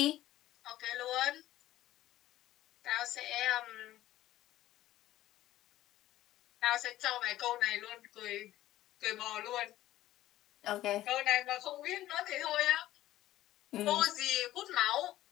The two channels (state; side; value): quieter; right; 14.6 dB